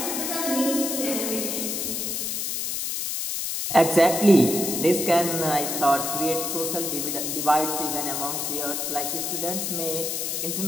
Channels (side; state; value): left; noise; hiss, 2 dB below the sound